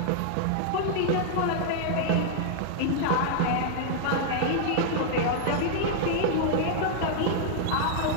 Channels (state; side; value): different; both; correlation -0.01